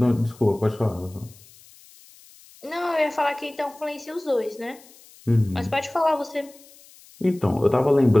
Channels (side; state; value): left; noise; hiss, 24 dB below the sound